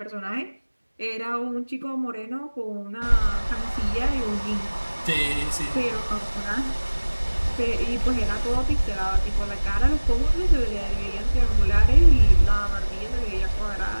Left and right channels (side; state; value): both; inverted; correlation -1.00